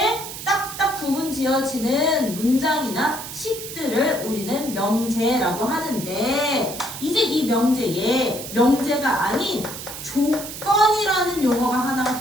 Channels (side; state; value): right; noise; hiss, 10 dB below the sound